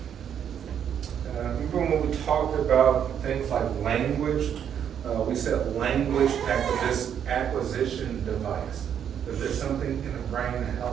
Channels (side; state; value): left; quieter; 8.8 dB